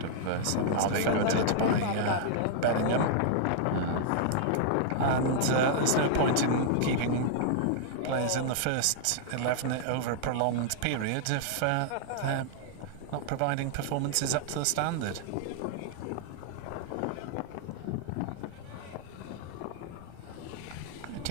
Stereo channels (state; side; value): different; both; correlation -0.01